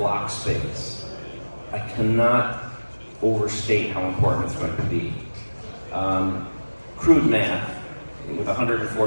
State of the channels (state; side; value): inverted; both; correlation -1.00